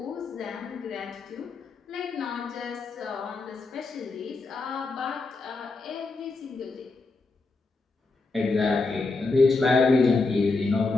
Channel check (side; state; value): right; quieter; 3.7 dB